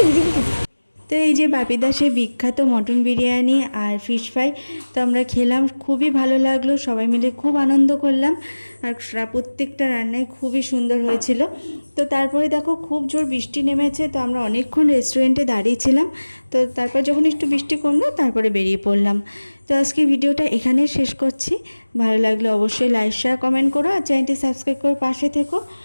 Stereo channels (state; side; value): inverted; both; correlation -1.00